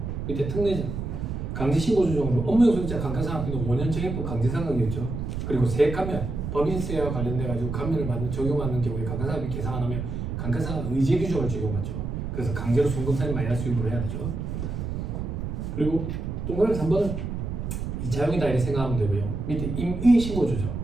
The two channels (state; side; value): noise; right; rumble, 4 dB below the sound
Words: 밑에 특례 강제신고 조정으로 업무용소득자 감가상각비는 5년 정액법 강제상각이었죠. 그리고 세액감면 법인세와 관련돼 가지고 감면을 받는 적용받는 경우에 감가상각비 계상 안 하면 감가상각 의제 규정을 적용받죠. 그래서 강제로 송금산이 마이너스 유무를 해야 되죠. 그리고 동그라미 3번은 2차형이다 이렇게 생각하면 되고요. 밑에 임의 신고 조정.